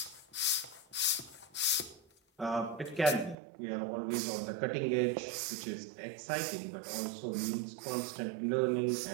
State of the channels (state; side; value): drops out; left; at 3.4 s